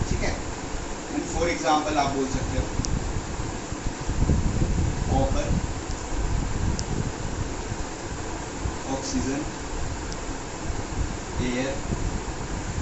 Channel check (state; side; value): identical; both; correlation 1.00